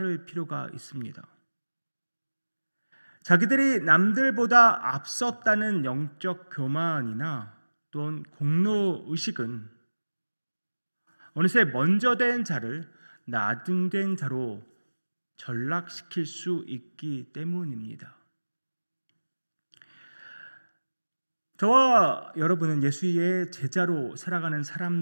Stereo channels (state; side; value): inverted; both; correlation -1.00